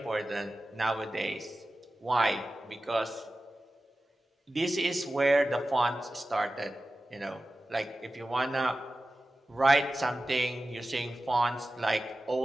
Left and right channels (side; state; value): both; normal; correlation 0.95